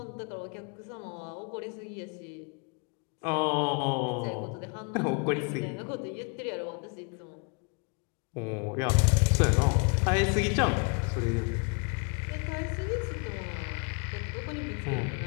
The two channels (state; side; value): quieter; right; 35.9 dB